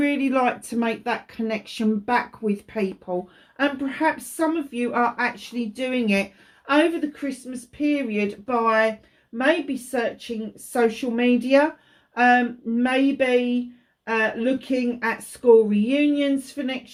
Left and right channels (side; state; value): both; identical; correlation 1.00